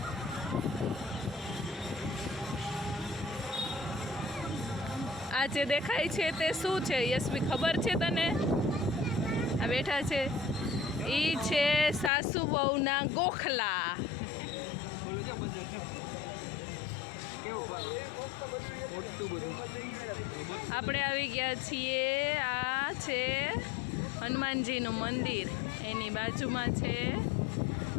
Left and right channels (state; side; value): drops out; right; at 12.1 s